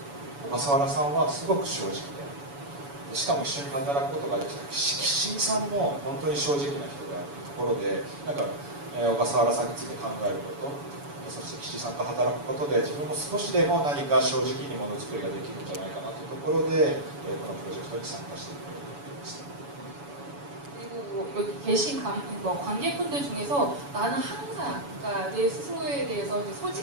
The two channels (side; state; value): left; late; 7.0 ms